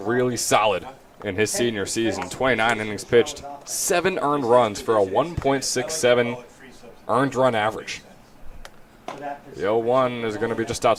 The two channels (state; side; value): identical; both; correlation 1.00